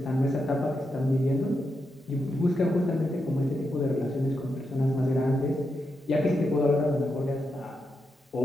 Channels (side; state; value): both; normal; correlation 0.85